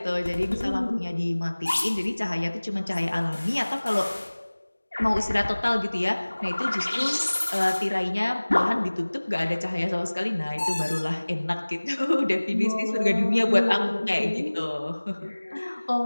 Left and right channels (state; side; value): inverted; both; correlation -1.00